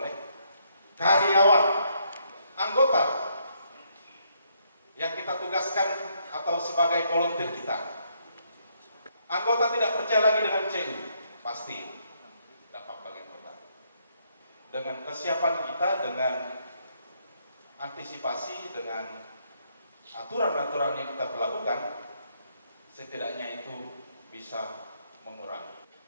karyawan, anggota yang kita tugaskan atau sebagai volunteer kita. Anggota tidak percaya lagi dengan CU, pasti dampak bagi anggota. Dengan kesiapan kita, dengan antisipasi, dengan aturan-aturan yang kita berlakukan, setidaknya itu bisa mengurangi.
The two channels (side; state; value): both; inverted; correlation -0.73